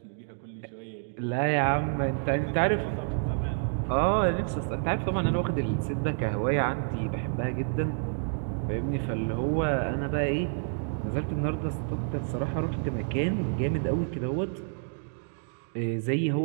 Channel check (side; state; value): left; silent; digital silence